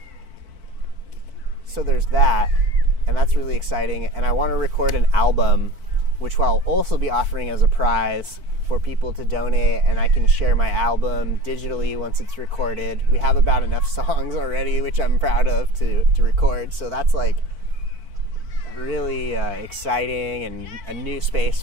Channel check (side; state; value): left; late; 4.5 ms